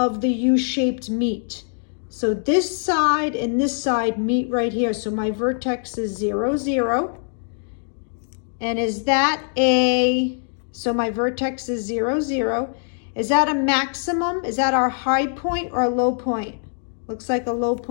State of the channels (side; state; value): right; silent; 64 dB below the other